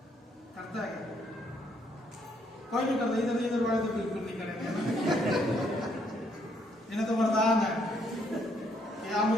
करता है क्या? कोई नहीं करता। इधर इधर वाले तो बिल्कुल नहीं करेंगे। इन्हें तो वरदान है कि हम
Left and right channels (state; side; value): normal; both; correlation 0.70